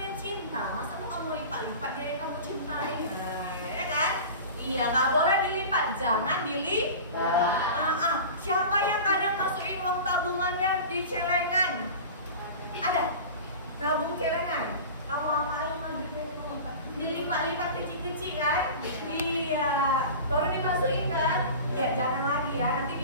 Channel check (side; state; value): both; inverted; correlation -0.35